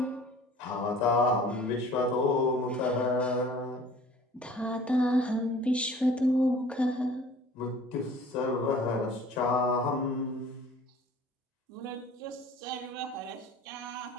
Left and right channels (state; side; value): normal; both; correlation 0.48